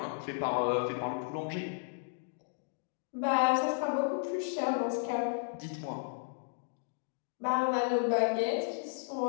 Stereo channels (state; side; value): silent; right; digital silence